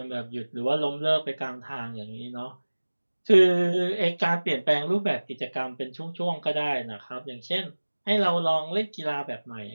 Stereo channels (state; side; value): inverted; both; correlation -1.00